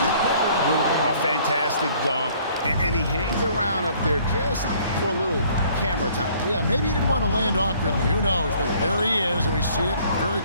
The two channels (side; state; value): both; inverted; correlation -0.59